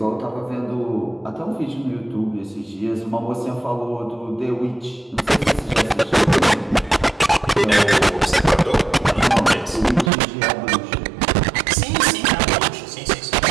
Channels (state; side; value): drops out; left; at 10.1 s